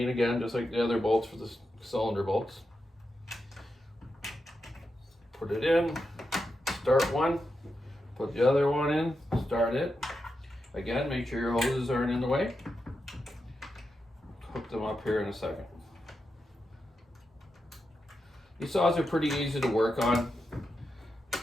again, just like the other bolts for the cylinder bolts. Put it in, start one, put the other one in, start it. Again, make sure your hoses aren't in the way. Hook them up here in a second. These saws are pretty easy to work on.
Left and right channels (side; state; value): both; normal; correlation 0.87